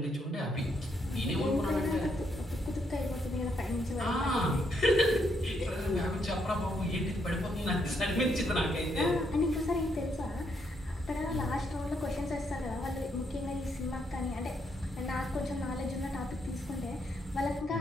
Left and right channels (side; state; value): both; normal; correlation 0.76